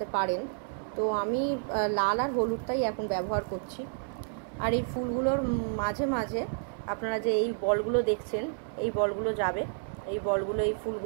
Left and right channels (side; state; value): left; silent; 58 dB below the other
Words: পারেন। তো আমি লাল আর হলুদটাই এখন ব্যবহার করছি। আর এই ফুলগুলোর মাঝে মাঝে আপনারা যে এই বলগুলো দেখছেন, এই বলগুলো যাবে, এই বলগুলো এই